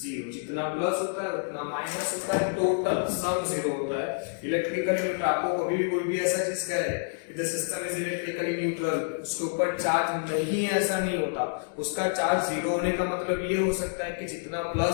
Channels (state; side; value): silent; right; digital silence